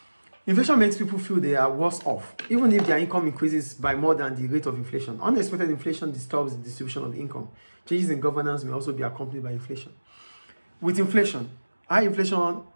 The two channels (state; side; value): inverted; both; correlation -1.00